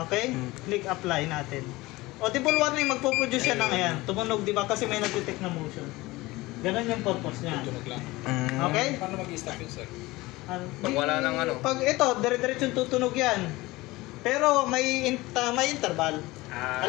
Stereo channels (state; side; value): quieter; right; 20.3 dB